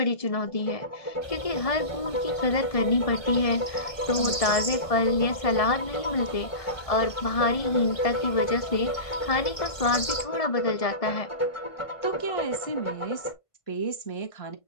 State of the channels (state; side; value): late; right; 1.5 ms